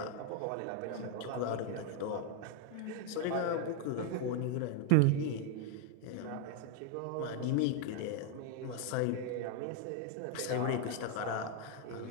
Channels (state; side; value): different; both; correlation 0.01